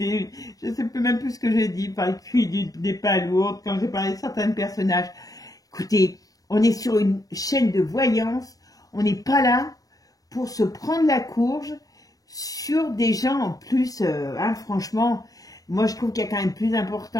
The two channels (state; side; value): late; right; 0.18 ms